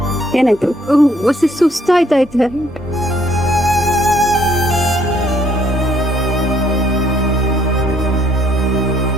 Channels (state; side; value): normal; both; correlation 0.66